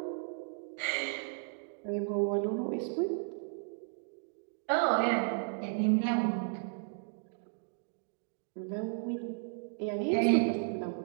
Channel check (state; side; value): silent; left; 55 dB below the other